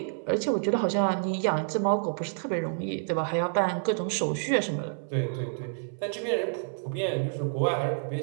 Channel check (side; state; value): left; silent; 59 dB below the other